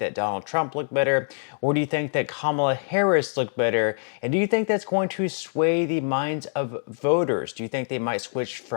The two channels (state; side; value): silent; right; digital silence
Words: Donald Trump looked better, or do you think that Kamala Harris looked better? And do you think that's going to sway the minds of voters? Do you think they might switch